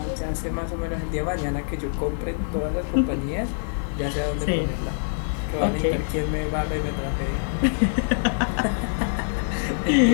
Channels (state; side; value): silent; right; 62 dB below the other